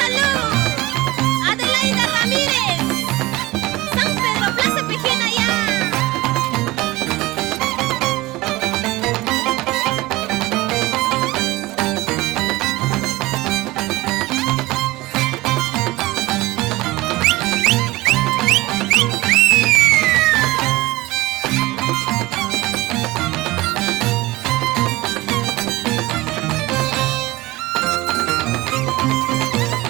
Adelaida Ramírez. San Pedro, Plaza Pejena ya.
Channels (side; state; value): left; quieter; 19.9 dB